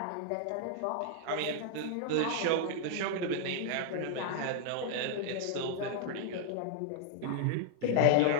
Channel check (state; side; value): different; both; correlation 0.00